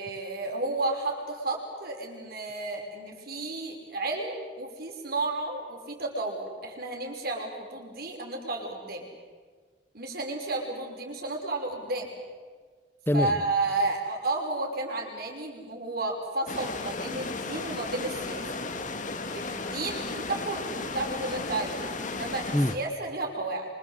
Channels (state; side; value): normal; both; correlation -0.10